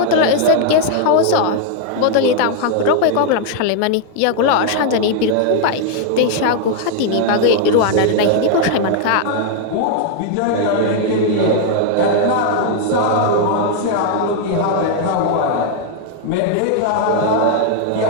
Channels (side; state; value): both; different; correlation 0.00